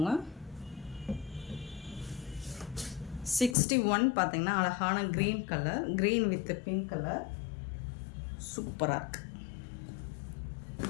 61 பார்த்தீங்கன்னா அழகான green colour, green with pink colour, சூப்பராக இருக்குது.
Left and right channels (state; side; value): drops out; right; at 3.6 s